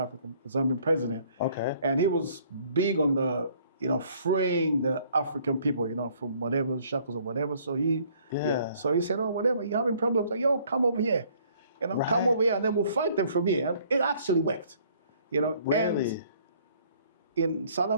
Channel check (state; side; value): inverted; both; correlation -0.60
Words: Zambian president. Okay. And he was big on the, freeing the African people, from whatever shackles or whatever. So so he said, oh, whatever, you're having problems, like, yo, come over here. Come over here and then we'll fight them from here. And it actually worked. Really? And in South